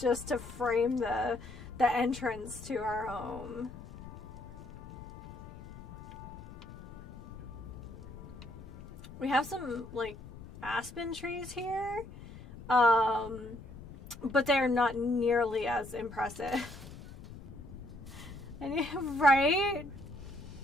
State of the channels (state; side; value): noise; left; rumble, 14 dB below the sound